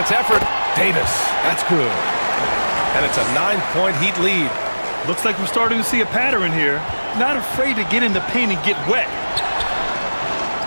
effort. Davis, that's good. And it's a 9-point Heat lead. Looks like we're starting to see a pattern here. Not afraid to get in the paint and get wet.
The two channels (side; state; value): both; inverted; correlation -1.00